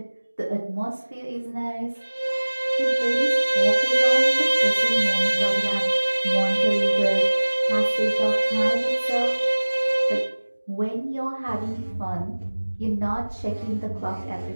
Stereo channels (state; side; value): inverted; both; correlation -1.00